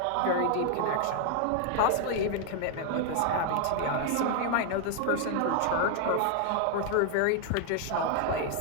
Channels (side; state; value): both; different; correlation 0.00